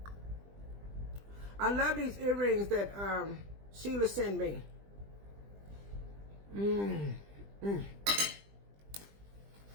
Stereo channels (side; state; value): left; late; 20 ms